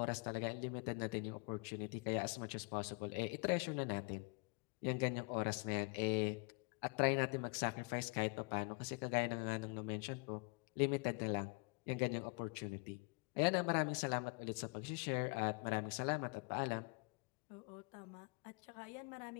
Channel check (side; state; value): right; quieter; 33.4 dB